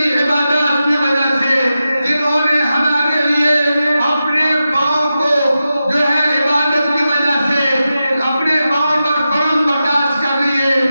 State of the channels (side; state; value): both; inverted; correlation -0.91